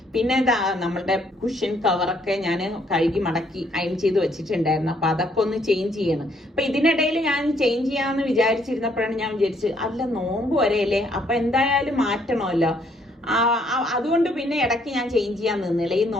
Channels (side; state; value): both; normal; correlation 0.68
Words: പിന്നെ നമ്മളുടെ കുഷൻ കവറൊക്കെ ഞാൻ കഴുകി മടക്കി അയൺ ചെയ്ത് വെച്ചിട്ടുണ്ടായിരുന്നു. അപ്പൊ അതൊക്കെ ഒന്ന് ചേഞ്ച് ചെയ്യണം. അപ്പൊ ഇതിനിടയിൽ ഞാൻ ചേഞ്ച് ചെയ്യാമെന്ന് വിചാരിച്ചിരുന്നപ്പോഴാണ് ഞാൻ വിചാരിച്ചത്, അല്ല നോമ്പ് വരെയല്ലേ, അപ്പൊ എന്തായാലും മാറ്റണമല്ലോ. അതുകൊണ്ട് പിന്നെ ഇടയ്ക്ക് ഞാൻ ചേഞ്ച് ചെയ്യാൻ നിന്നില്ല. ഈ